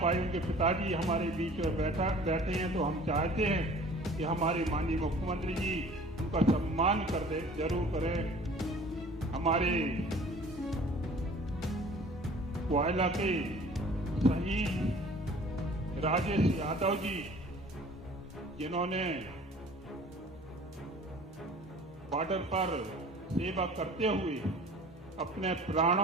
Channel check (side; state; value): both; normal; correlation 0.48